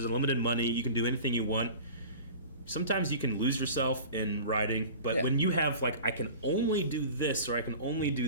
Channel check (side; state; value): both; inverted; correlation -0.38